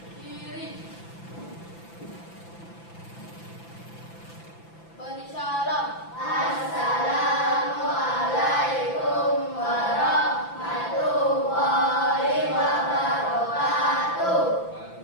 Kiri. Beri salam. Assalamualaikum warahmatullahi wabarakatuh.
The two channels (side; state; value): right; late; 5.9 ms